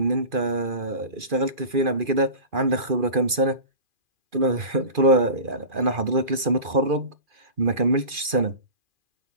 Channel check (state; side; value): late; left; 2.4 ms